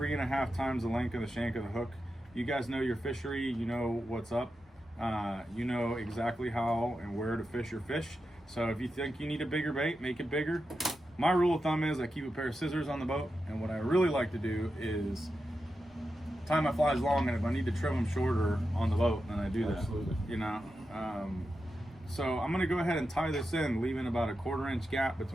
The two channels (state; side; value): normal; both; correlation 0.89